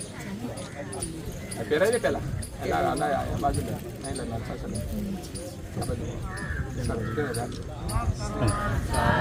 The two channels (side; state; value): both; identical; correlation 1.00